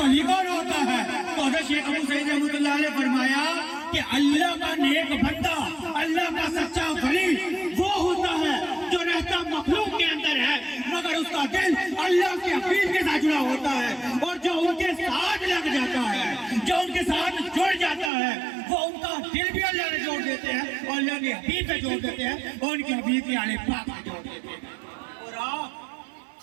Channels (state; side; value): drops out; left; at 18.1 s